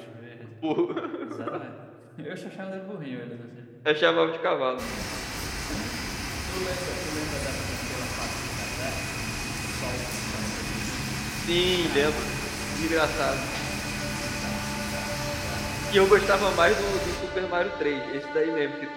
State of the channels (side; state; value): both; identical; correlation 1.00